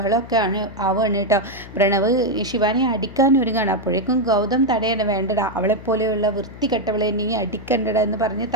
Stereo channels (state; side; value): noise; left; hum, 16 dB below the sound